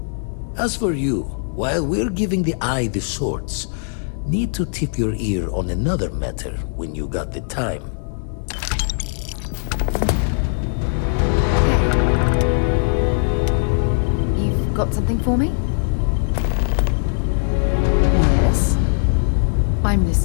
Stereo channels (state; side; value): silent; right; digital silence